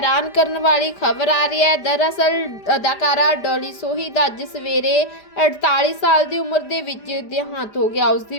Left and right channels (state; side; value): late; right; 5.0 ms